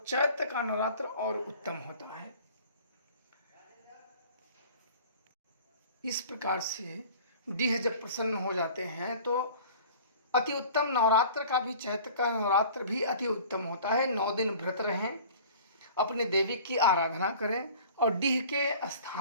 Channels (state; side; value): inverted; both; correlation -0.45